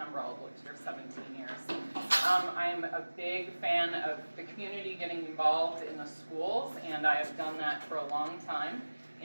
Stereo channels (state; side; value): inverted; both; correlation -1.00